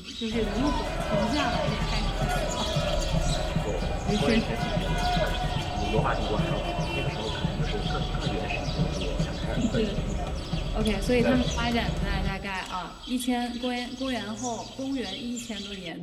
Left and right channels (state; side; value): identical; both; correlation 1.00